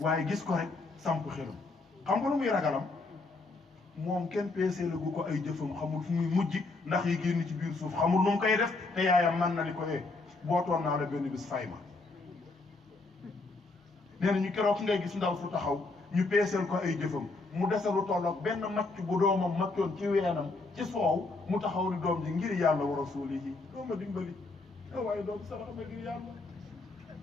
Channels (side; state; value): right; quieter; 3.4 dB